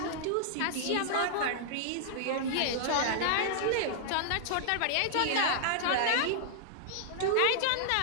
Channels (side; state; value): both; different; correlation -0.01